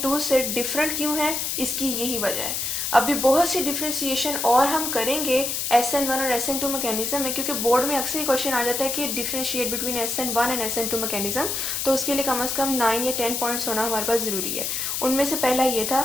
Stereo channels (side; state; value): left; noise; hiss, 1 dB below the sound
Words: से डिफरेंट क्यों है, इसकी यही वजह है। अभी बहुत सी डिफ्रेंसिएशन और हम करेंगे SN1 और SN2 मैकेनिज्म में, क्योंकि बोर्ड में अक्सर क्वेश्चन आ जाता है कि differentiate between SN1 and SN2 mechanism. तो उसके लिए कम से कम 9 या 10 पॉइंट्स होना हमारे पास ज़रूरी है। उनमें से पहला ये था